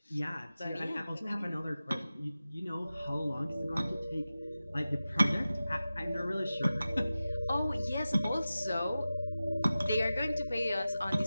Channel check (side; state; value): both; inverted; correlation -0.95